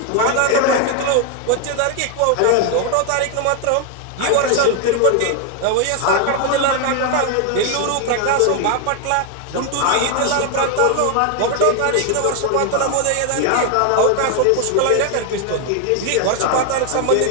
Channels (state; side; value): different; both; correlation 0.00